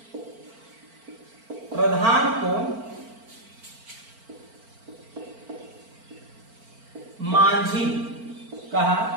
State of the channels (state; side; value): late; left; 4.4 ms